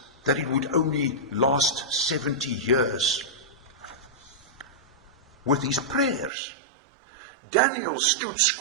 that it would only last 70 years. With his prayers, Daniel stood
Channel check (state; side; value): drops out; left; at 6.3 s